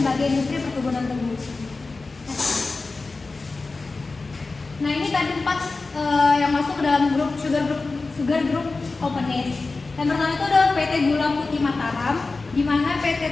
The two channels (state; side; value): quieter; right; 3.7 dB